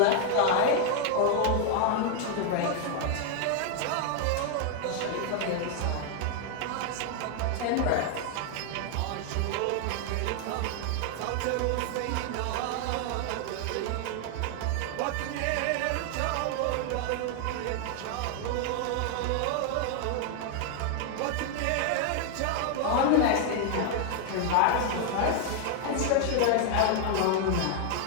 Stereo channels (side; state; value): both; different; correlation 0.00